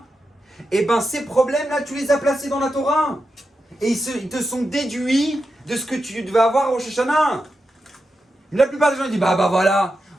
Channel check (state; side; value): normal; both; correlation 0.88